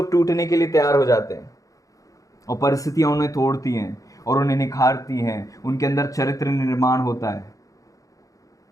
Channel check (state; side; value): late; right; 0.16 ms